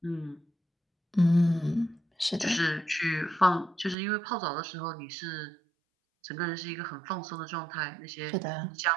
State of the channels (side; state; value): left; drops out; at 4.0 s